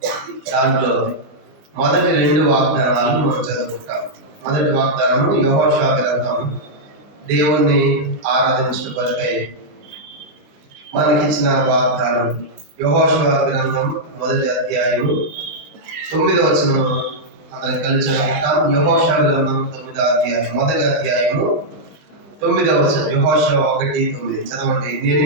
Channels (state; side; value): late; left; 20 ms